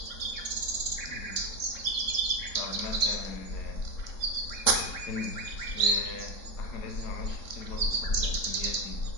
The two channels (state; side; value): late; right; 3.7 ms